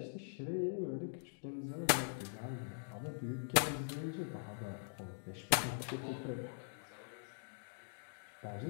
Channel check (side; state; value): right; silent; digital silence